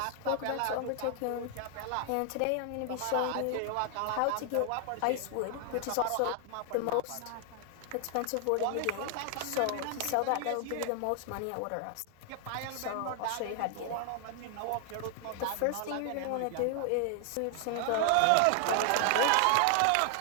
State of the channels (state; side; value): different; both; correlation 0.00